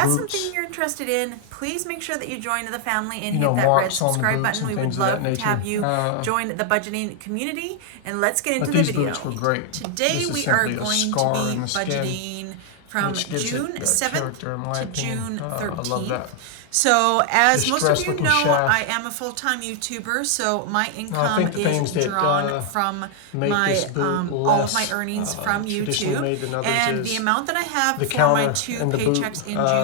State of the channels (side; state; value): both; different; correlation 0.00